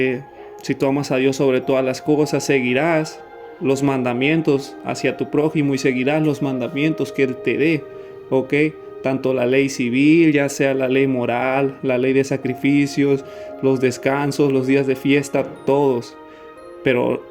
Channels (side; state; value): both; identical; correlation 1.00